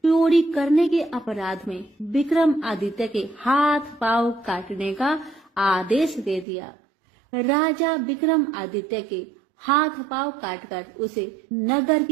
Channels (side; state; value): left; drops out; at 6.5 s